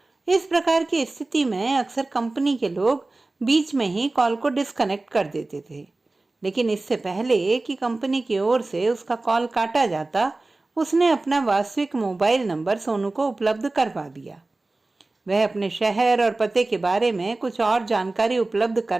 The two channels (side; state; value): left; quieter; 3.1 dB